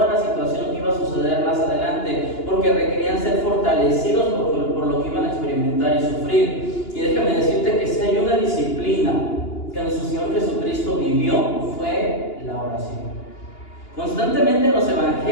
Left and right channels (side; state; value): right; late; 2.9 ms